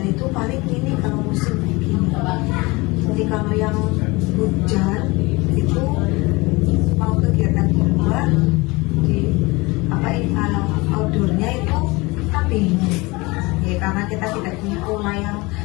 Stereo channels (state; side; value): quieter; right; 23.9 dB